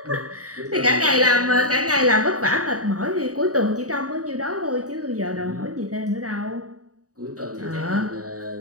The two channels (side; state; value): left; late; 0.66 ms